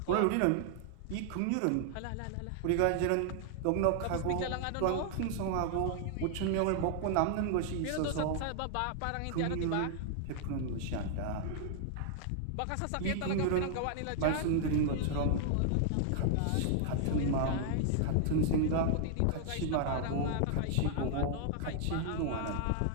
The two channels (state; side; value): different; both; correlation -0.01